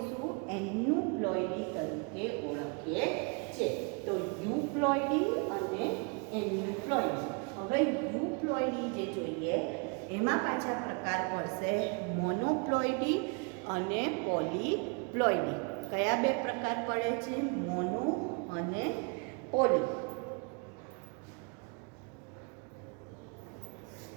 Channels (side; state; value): left; quieter; 34.6 dB